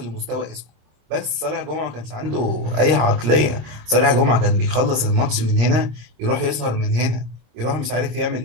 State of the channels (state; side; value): late; left; 26 ms